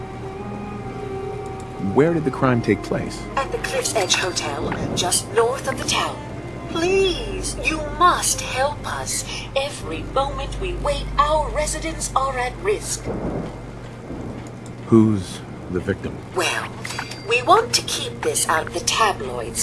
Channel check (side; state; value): both; identical; correlation 1.00